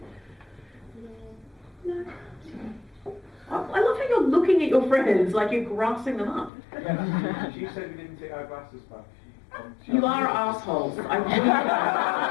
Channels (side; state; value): right; drops out; at 6.5 s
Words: No. I love how you're looking at your friends like you're grassing them up. She said we didn't take our glasses back. You are assholes. I knew